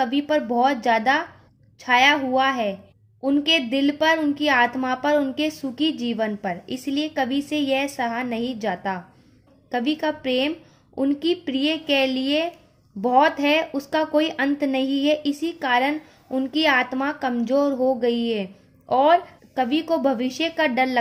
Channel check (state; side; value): identical; both; correlation 1.00